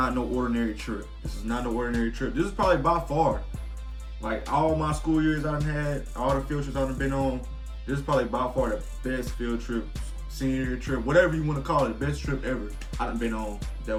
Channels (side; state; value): both; identical; correlation 1.00